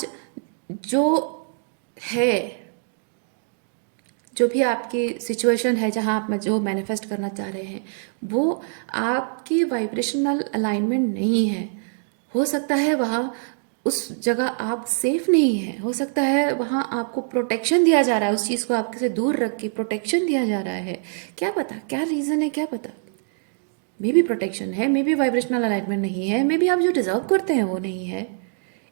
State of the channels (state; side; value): silent; left; 63 dB below the other